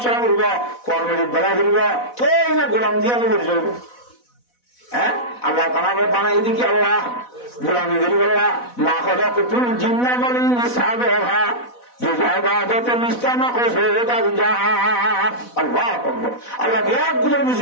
সেরা করব কর্মের বেলা করব তো না গোলাম দিয়ে আমি পরিচয় হ্যাঁ আল্লাহ তাআলা বানাই দিকে আল্লাহ গোলামি করি আল্লাহ মা খলাকুতুল জিন্না ওয়াল ইনসা সাবাহা আল্লাহ বিরাট গুলোর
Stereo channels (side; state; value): right; late; 4.1 ms